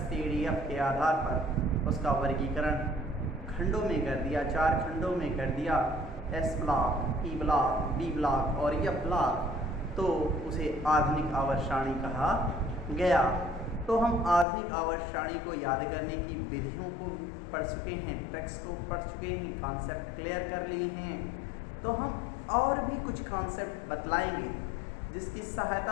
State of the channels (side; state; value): right; drops out; at 14.5 s